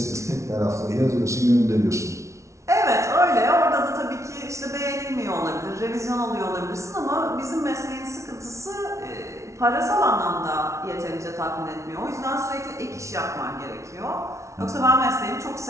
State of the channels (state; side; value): late; left; 0.14 ms